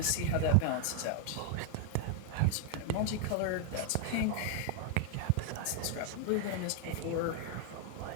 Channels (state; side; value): different; both; correlation 0.00